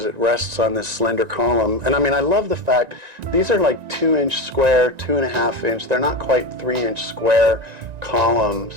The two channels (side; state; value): left; late; 1.9 ms